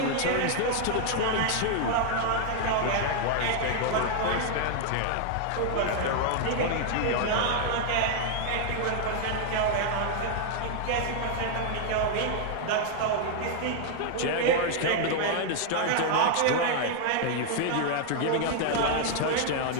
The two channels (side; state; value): both; different; correlation 0.00